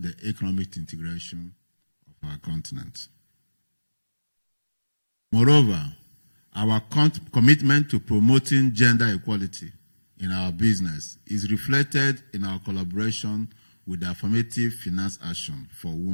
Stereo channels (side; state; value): both; inverted; correlation -1.00